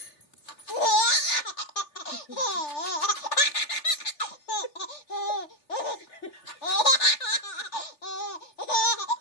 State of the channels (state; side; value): late; right; 3.4 ms